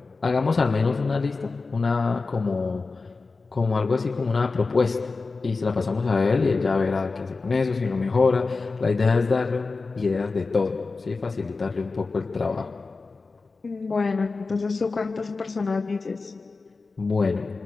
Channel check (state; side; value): quieter; right; 4.0 dB